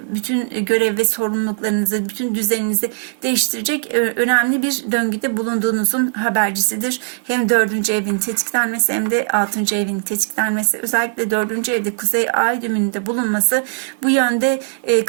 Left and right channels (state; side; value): silent; left; 57 dB below the other